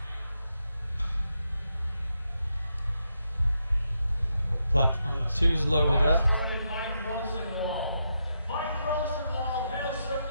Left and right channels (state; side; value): inverted; both; correlation -0.83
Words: Platform 2's loaded up.